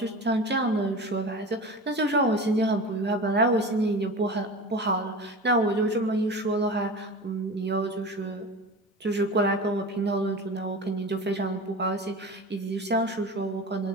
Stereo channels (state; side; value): normal; both; correlation 0.32